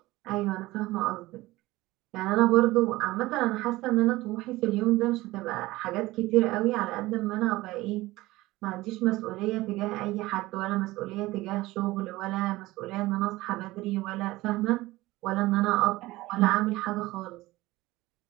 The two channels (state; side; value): quieter; left; 18.8 dB